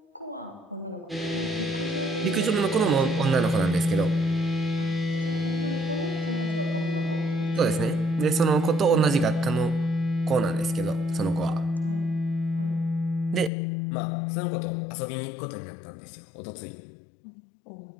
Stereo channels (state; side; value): drops out; right; at 13.5 s